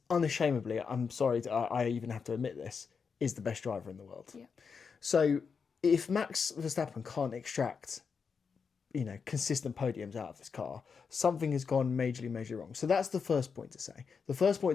unashamedly, I'm sorry, I even have to admit this, is the best driver in the world. Yeah. So if Max Verstappen can't extract, consistent podiums out of this car, something has gone majorly wrong. So that's the first point to say. The first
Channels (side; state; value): right; quieter; 5.7 dB